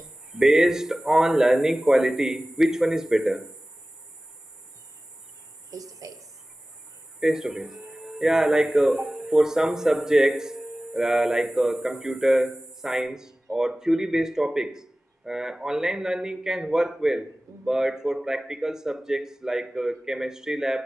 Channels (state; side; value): normal; both; correlation 0.97